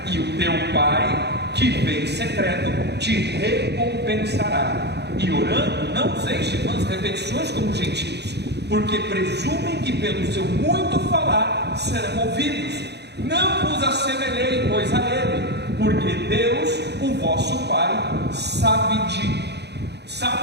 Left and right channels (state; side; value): late; left; 0.49 ms